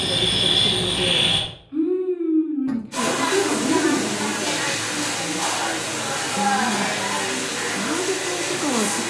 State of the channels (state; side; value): identical; both; correlation 1.00